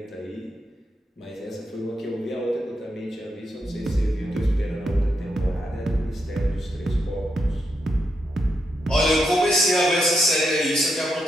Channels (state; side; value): normal; both; correlation 0.82